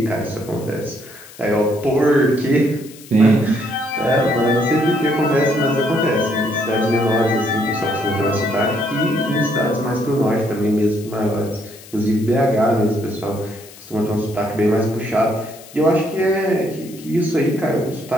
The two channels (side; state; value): left; noise; hiss, 20 dB below the sound